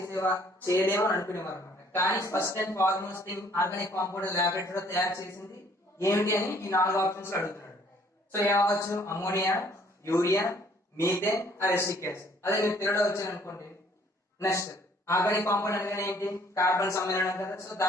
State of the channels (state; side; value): normal; both; correlation 0.60